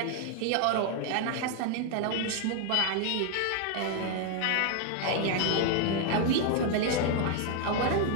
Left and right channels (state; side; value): different; both; correlation 0.00